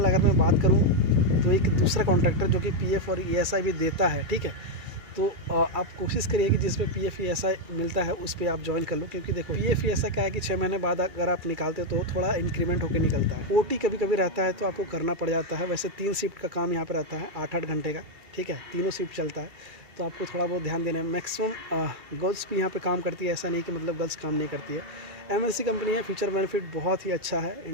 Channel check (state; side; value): late; left; 2.4 ms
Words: अगर मैं बात करूँ तो एक दूसरा कॉन्ट्रैक्टर जो कि PF और ESI भी देता है, ठीक है। तो आप कोशिश करिए कि जिस पे PF ESI मिलता है उस पर आप ज्वाइन कर लो, क्योंकि देखो PF ESI क्या है कि 6 महीने बाद अगर आप निकालते हो तो थोड़ा इंक्रीमेंट होकर निकलता है। OT कभी कभी रहता है तो आपको करना पड़ जाता है। वैसे 3 शिफ्ट का काम यहाँ पर रहता है, 8-8 घंटे का, ठीक है, तीनों शिफ्ट चलता है, तो आपको थोड़ा बहुत ध्यान देना है। मैक्सिमम गर्ल्स भी यहाँ पे काम करती है, ऐसा नहीं कि मतलब गर्ल्स काम नहीं करती है। MNC कंपनी है, फीचर बेनिफिट बहुत ही अच्छा है।